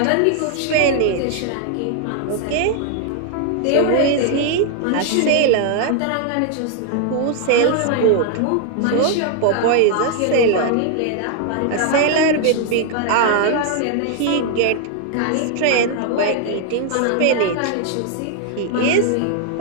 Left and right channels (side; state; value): both; different; correlation 0.00